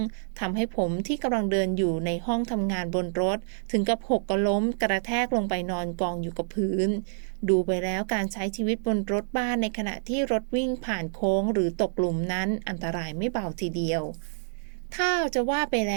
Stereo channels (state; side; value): silent; left; digital silence